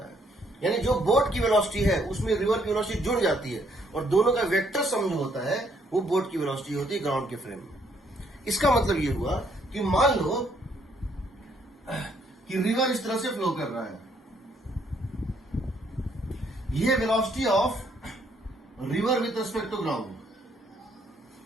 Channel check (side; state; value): both; normal; correlation 0.69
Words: है। यानी जो बोट की वेलोसिटी है उसमें रिवर की वेलोसिटी जुड़ जाती है और दोनों का वेक्टर सम जो होता है वो बोट की वेलोसिटी होती है ग्राउंड के फ्रेम में। इसका मतलब ये हुआ कि मान लो कि रिवर इस तरह से फ्लो कर रहा है, यह velocity of river with respect to ground,